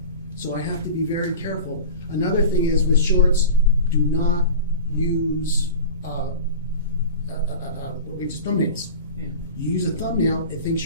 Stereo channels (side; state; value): both; inverted; correlation -0.35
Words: So I have to be very careful. Another thing is with shorts, do not use thumbnails. You use a thumbnail, it thinks